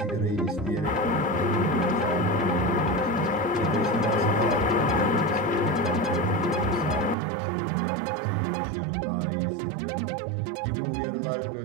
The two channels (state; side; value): drops out; left; at 7.2 s